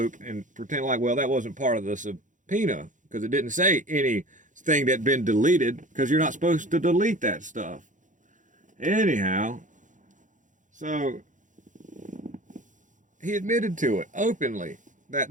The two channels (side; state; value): left; late; 0.37 ms